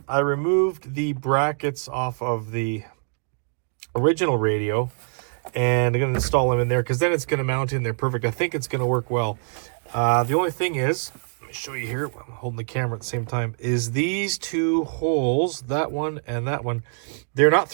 I removed the brackets off of the original radio, and I'm going to install them in there because then it's going to mount in there perfect. I think it's going to work well. The only thing is, let me show you here, I'm holding the camera at the same time, is these two holes, that one and that one, they're not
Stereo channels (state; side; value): silent; left; digital silence